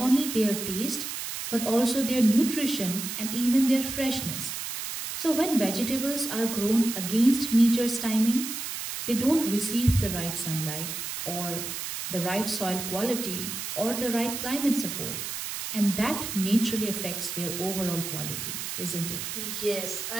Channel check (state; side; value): noise; right; hiss, 5 dB below the sound